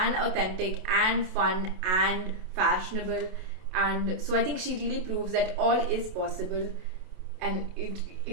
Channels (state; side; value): late; left; 27 ms